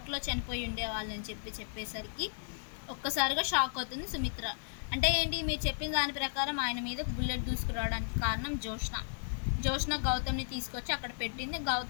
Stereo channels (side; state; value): right; silent; digital silence